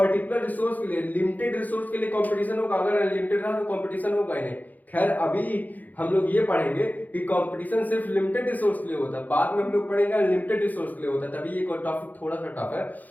रिसोर्स के लिए, लिमिटेड रिसोर्स के लिए कंपटीशन होगा। अगर अनलिमिटेड रहा तो कंपटीशन होगा ही नहीं। खैर अभी हम लोग ये पढ़ेंगे कि कंपटीशन सिर्फ लिमिटेड रिसोर्स के लिए होता है, बाद में हम लोग पढ़ेंगे अनलिमिटेड रिसोर्स के लिए होता है, तभी ये टॉपिक थोड़ा सा टफ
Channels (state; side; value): late; right; 0.082 ms